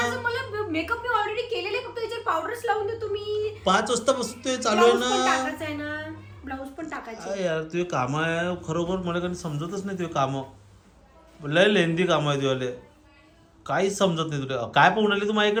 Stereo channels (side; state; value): both; identical; correlation 1.00